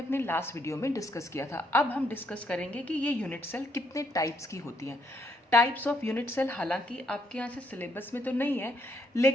लास्ट वीडियो में डिस्कस किया था। अब हम डिस्कस करेंगे कि ये यूनिट सेल कितने टाइप्स की होती हैं। टाइप्स ऑफ यूनिट सेल हालांकि आपके यहाँ से सिलेबस में तो नहीं है,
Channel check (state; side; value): normal; both; correlation 0.73